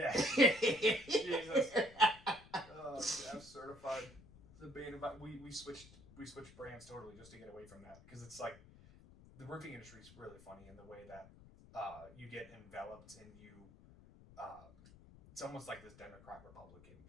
Jesus. GAF certified. We switched brands totally just to get away from that, because it's like the roofing industry is really funny in the way that you get enveloped and it's almost like this Democrat Republican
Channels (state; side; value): noise; left; rumble, 21 dB below the sound